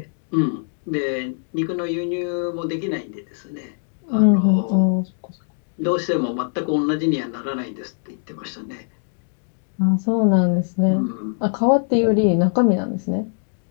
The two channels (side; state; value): right; silent; digital silence